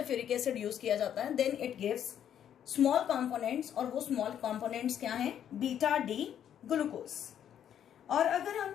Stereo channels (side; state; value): right; quieter; 9.7 dB